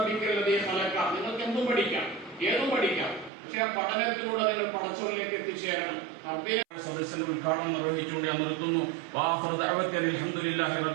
ഖലഖ, നിങ്ങൾക്ക് എന്തും പഠിക്കാം, ഏതും പഠിക്കാം, പക്ഷെ ആ പഠനത്തിലൂടെ നിങ്ങൾ പടച്ചോറിലേക്ക് എത്തിച്ചേരണം. സദസ്സിന്റെ ഉദ്ഘാടനം നിർവഹിച്ചുകൊണ്ട് ഞാൻ നിർത്തുന്നു.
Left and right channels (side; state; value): left; drops out; at 3.3 s